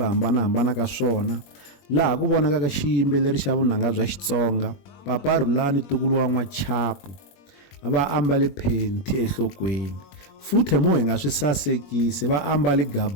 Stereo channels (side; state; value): right; late; 21 ms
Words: hambanahambana ka swona, laha ku vonakaka xiyimbeleri xa vunanga bya Xitsonga Papa Rhulani Tukulu wa N'wachapu va ambale phenti enhlokweni, futhi mo hi nga swi sasekisi va ambale